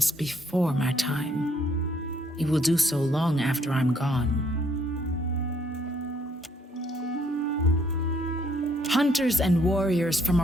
before my time. He will do so long after I'm gone. Hunters and warriors from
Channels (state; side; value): normal; both; correlation 0.67